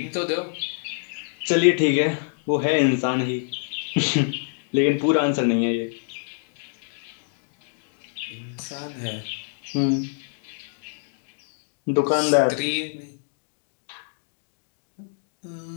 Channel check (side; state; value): right; silent; digital silence